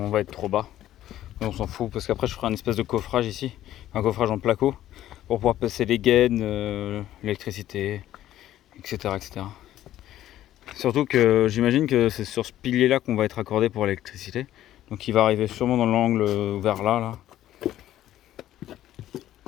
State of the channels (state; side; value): quieter; right; 13.0 dB